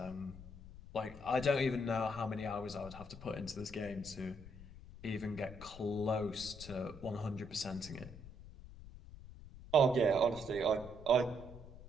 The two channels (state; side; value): noise; left; rumble, 15 dB below the sound